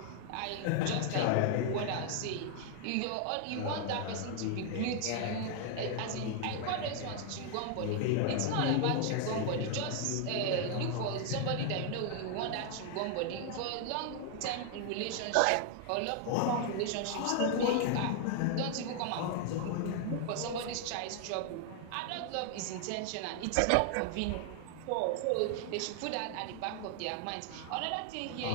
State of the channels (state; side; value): different; both; correlation 0.00